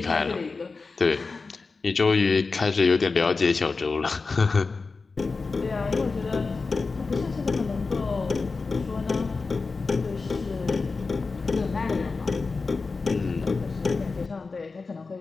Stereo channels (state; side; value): quieter; right; 4.2 dB